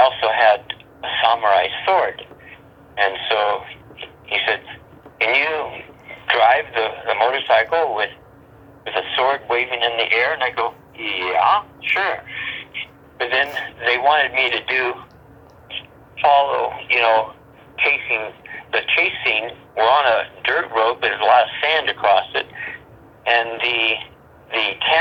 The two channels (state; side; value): identical; both; correlation 1.00